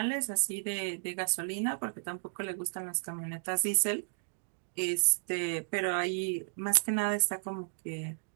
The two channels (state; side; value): silent; left; digital silence